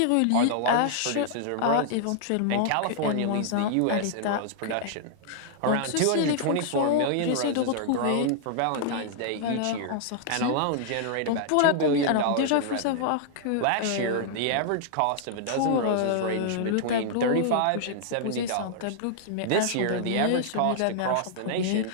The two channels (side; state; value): both; different; correlation -0.01